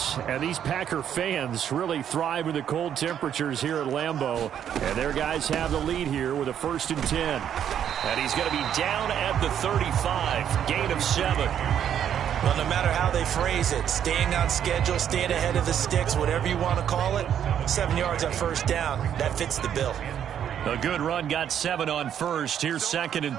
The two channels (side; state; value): left; quieter; 9.4 dB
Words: and these Packer fans really thrive in the cold temperatures here at Lambeau. And their guys have the lead here with a 1st and 10. And he's going to be down at the 35. Gain of 7. Well, no matter how they phrase it, staying on schedule, staying ahead of the sticks, whatever you want to call it, 7 yards on first down, that fits the bill. A good run, got 7 on first. Here's 2nd